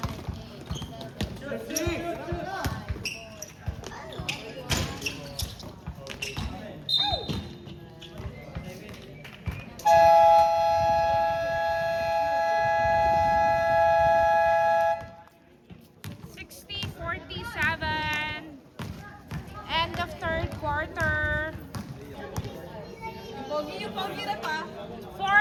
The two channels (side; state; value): both; identical; correlation 1.00